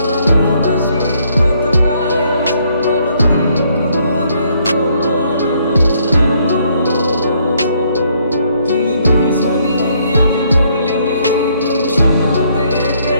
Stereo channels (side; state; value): both; inverted; correlation -0.69